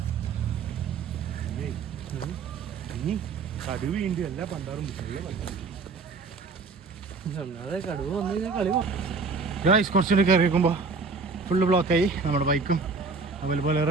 കടുവയുണ്ട്. എല്ലാ പണ്ടാറും കടുവ വന്നു കഴിഞ്ഞാൽ കളി. കുറച്ചുകൂടി കയറിയിരിക്കുമ്പോൾ ഫുള്ള് ബ്ലോക്കായി. നമ്മുടെ ബൈക്കും അതുപോലെ വേറെ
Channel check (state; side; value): quieter; left; 4.5 dB